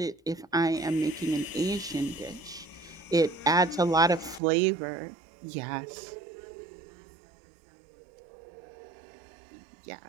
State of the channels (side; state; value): left; drops out; at 4.4 s